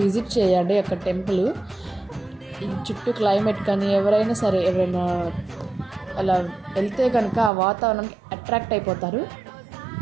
విజిట్ చేయండి అక్కడ టెంపుల్. ఈ చుట్టూ క్లైమేట్ కానీ ఎవరైనా అలా వెళ్తే కనుక ఆ వాతావరణానికి అట్రాక్ట్ అయిపోతారు.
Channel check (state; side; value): drops out; left; at 7.5 s